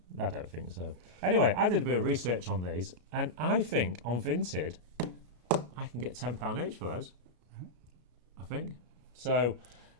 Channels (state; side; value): late; left; 33 ms